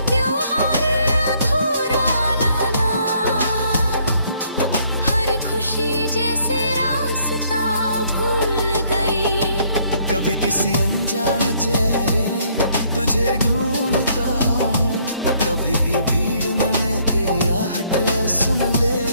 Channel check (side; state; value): both; inverted; correlation -0.66